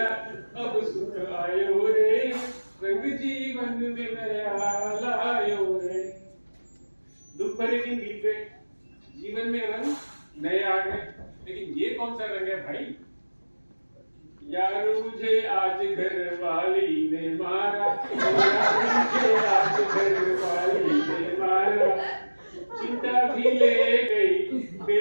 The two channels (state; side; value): inverted; both; correlation -1.00